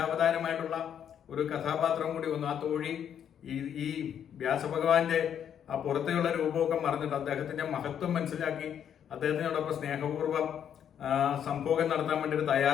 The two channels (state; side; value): quieter; right; 9.0 dB